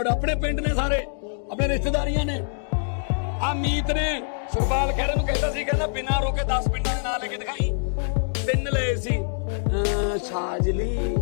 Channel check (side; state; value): right; silent; digital silence